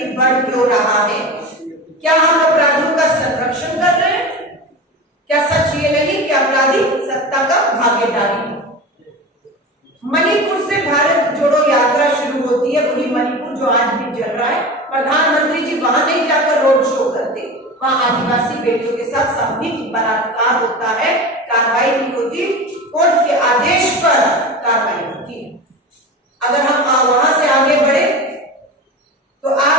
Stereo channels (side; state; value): both; normal; correlation 0.29